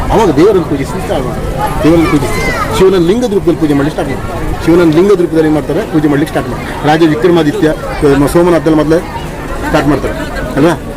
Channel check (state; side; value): identical; both; correlation 1.00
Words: ಅವಾಗ ದೇವರನ್ನು ಪೂಜಿಸಿ ಸ್ಟಾರ್ಟ್ ಮಾಡ್ತಾರೆ. ದೇವರನ್ನು ಪೂಜಿಸಿ ಶಿವನ ಲಿಂಗದ ರೂಪದಲ್ಲಿ ಪೂಜೆ ಮಾಡಲಿಕ್ಕೆ ಸ್ಟಾರ್ಟ್ ಮಾಡ್ತಾರೆ. ಶಿವನ ಲಿಂಗದ ರೂಪದಲ್ಲಿ ಏನು ಮಾಡ್ತಾರೆ, ಪೂಜೆ ಮಾಡಲಿಕ್ಕೆ ಸ್ಟಾರ್ಟ್ ಮಾಡ್ತಾರೆ. ರಾಜ ವಿಕ್ರಮಾದಿತ್ಯ ಸೋಮನಾಥದಲ್ಲಿ ಮೊದಲೇ ಸ್ಟಾರ್ಟ್ ಮಾಡ್ತಾರೆ ಅಲ್ವಾ.